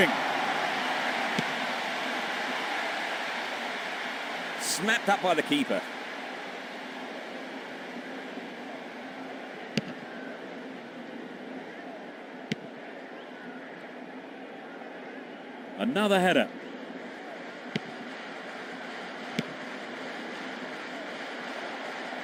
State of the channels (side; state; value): both; identical; correlation 1.00